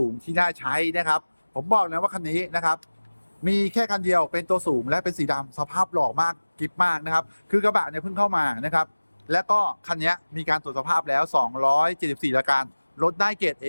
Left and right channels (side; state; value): both; inverted; correlation -1.00